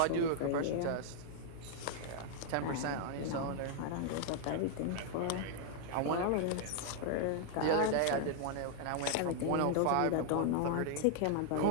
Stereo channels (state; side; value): different; both; correlation 0.00